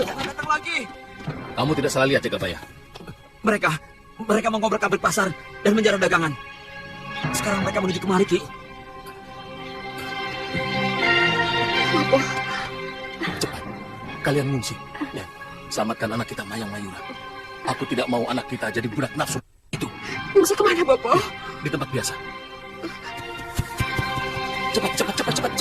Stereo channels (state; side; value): identical; both; correlation 1.00